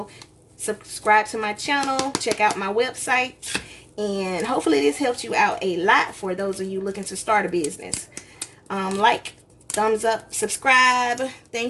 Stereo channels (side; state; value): both; identical; correlation 1.00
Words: subscribe to my channel, check out my website, and hopefully this helps you out a lot for those of you looking to start a business. Like, thumbs up, subscribe.